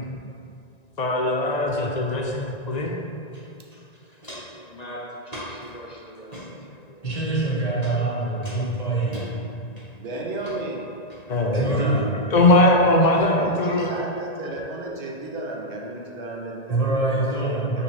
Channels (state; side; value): late; right; 1.9 ms